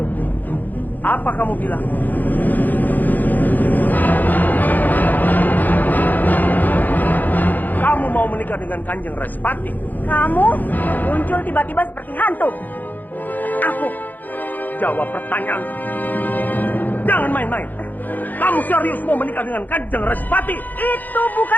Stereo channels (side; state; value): right; late; 0.084 ms